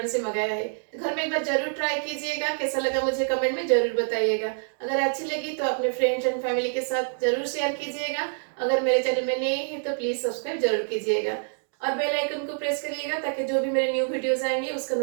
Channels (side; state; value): left; silent; digital silence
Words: से मंगाया है। तो घर में एक बार जरूर ट्राई कीजिएगा, कैसा लगा मुझे कमेंट में जरूर बताइएगा। अगर अच्छी लगी तो अपने फ्रेंड्स एंड फैमिली के साथ जरूर शेयर कीजिएगा। अगर मेरे चैनल में नए हैं तो प्लीज सब्सक्राइब जरूर कीजिएगा और बेल आइकन को प्रेस करिएगा ताकि जो भी मेरे न्यू वीडियोस आएंगे उसका